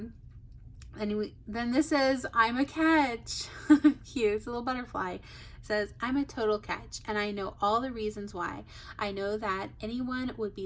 this says, I'm a catch. Cute. It's a little butterfly. It says, I'm a total catch, and I know all the reasons why. I know that anyone would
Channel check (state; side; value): identical; both; correlation 1.00